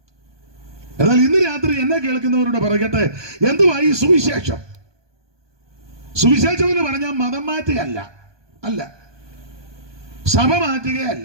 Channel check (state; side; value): late; left; 1.2 ms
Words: എന്നാൽ ഇന്ന് രാത്രി എന്നെ കേൾക്കുന്നവരോട് പറയട്ടെ, എന്തുവാ ഈ സുവിശേഷം? സുവിശേഷം എന്ന് പറഞ്ഞാൽ മതം മാറ്റുകയല്ല, സഭ